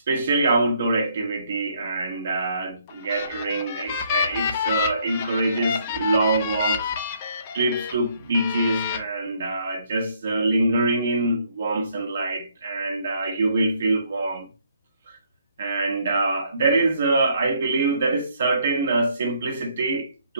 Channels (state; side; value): inverted; both; correlation -0.68